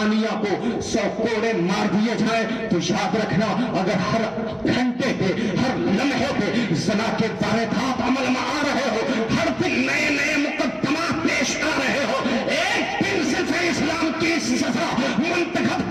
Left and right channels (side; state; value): both; identical; correlation 1.00